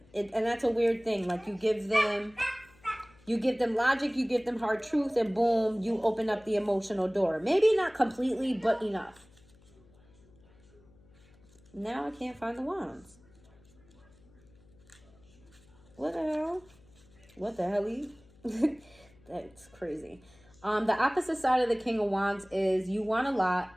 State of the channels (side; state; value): left; noise; hum, 27 dB below the sound